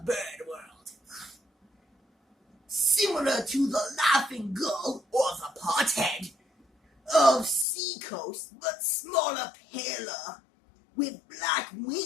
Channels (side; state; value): right; drops out; at 7.7 s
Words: bird world. Similar to the laughing gull or the pothead of seacoast, but smaller, paler, with black